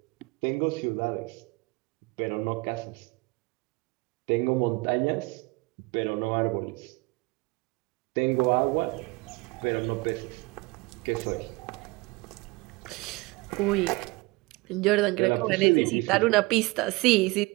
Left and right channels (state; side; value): quieter; left; 24.2 dB